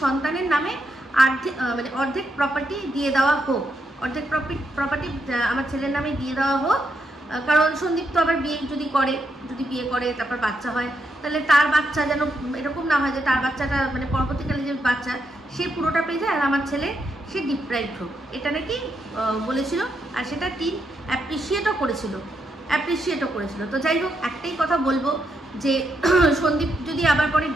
সন্তানের নামে অর্ধেক প্রপার্টি দিয়ে দেওয়া হোক, অর্ধেক প্রপার্টি আমার ছেলের নামে দিয়ে দেওয়া হোক। কারণ সন্দীপ তো আবার যদি বিয়ে করে তারপর বাচ্চা হয়, তাহলে তার বাচ্চা যেন এরকম না হয় যে তার বাচ্চাটা মানে পরবর্তীকালে যে বাচ্চা সে পুরোটা পেয়ে যায় আর আমার ছেলে সে ডিপ্রাইভড হোক, এটা নাকি বলেছিল। আর সেটা টিম অ্যাপ্রিসিয়েটও করেছিল। তো যাই হোক, একটাই কথা বলবো যে সন্দীপ যদি আবার পরে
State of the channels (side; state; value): both; normal; correlation 0.81